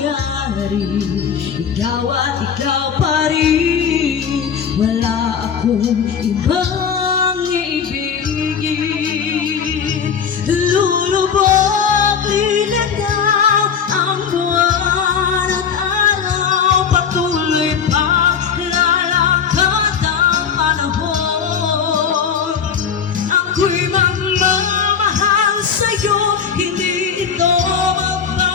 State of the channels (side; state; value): right; quieter; 7.0 dB